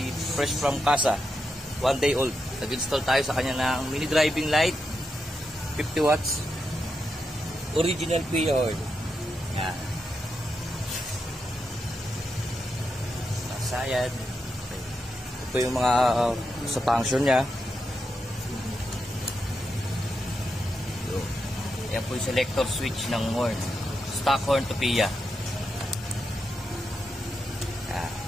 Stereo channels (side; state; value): both; normal; correlation 0.85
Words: fresh from casa, 1 day old. Nag-install tayo sa kanya ng mini driving light, 50 watts, original pre-oil. Yan. Masayad. Ito yung mga sa function niya. Yan po yung selector switch ng horn. Stock horn to PIA.